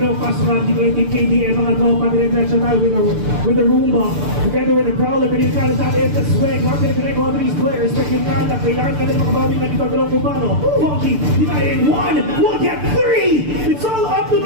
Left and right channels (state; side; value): late; left; 6.8 ms